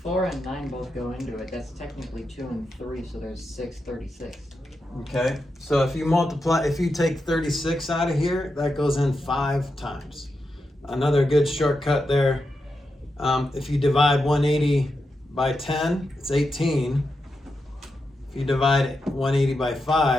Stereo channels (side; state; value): both; normal; correlation 0.87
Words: 4 and 9 both go into it, that's technically 2 and 3, so there's 6, 36. Okay. So if you take 36 out of here, that goes in 5 times. Another good shortcut there. If you divide 180 by 10, it's 18. If you divide 180 by